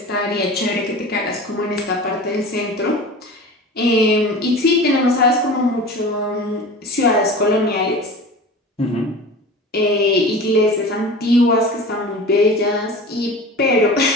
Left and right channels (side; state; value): both; normal; correlation 0.36